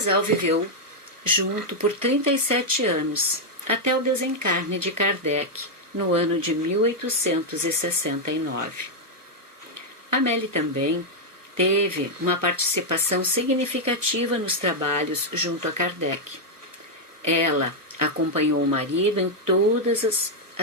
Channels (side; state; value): left; late; 1.1 ms